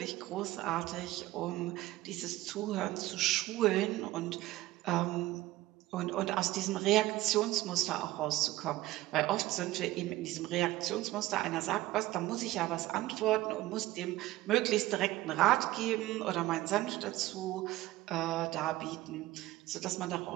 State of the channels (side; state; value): left; quieter; 16.9 dB